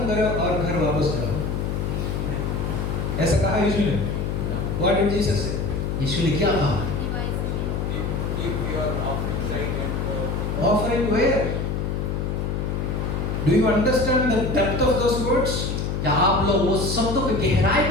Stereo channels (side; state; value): left; noise; hum, 1 dB below the sound